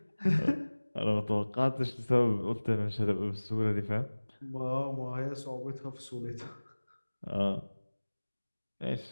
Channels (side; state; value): both; inverted; correlation -1.00